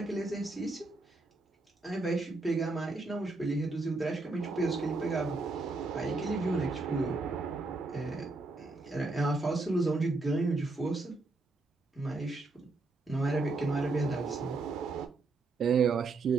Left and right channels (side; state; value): left; quieter; 3.4 dB